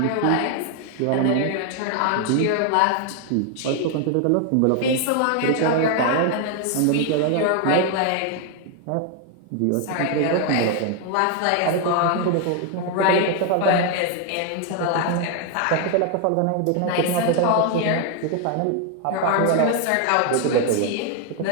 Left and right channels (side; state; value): both; different; correlation 0.01